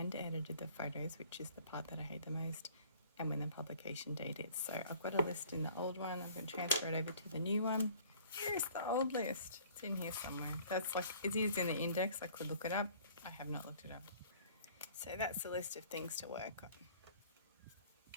edited the photos, which is the part that I hate the most, and when the publication date is. So I've got a list in the old one. I'm going to transfer it over to the new one. Here's the old list. It's in here somewhere. It is in the index. I could look it up. I have not looked it up. So that's the list of things to work on.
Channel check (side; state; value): both; inverted; correlation -0.53